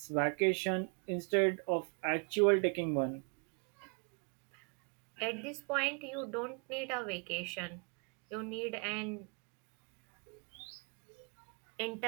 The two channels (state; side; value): quieter; left; 38.1 dB